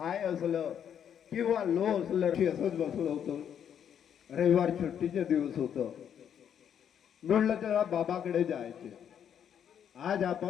असलं किंवा लो असलं असंच बसलो होतो. रविवार सुट्टीचे दिवस होतं. म्हणलं तेव्हा बाबाकडे जायचे. आज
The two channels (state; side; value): quieter; right; 8.8 dB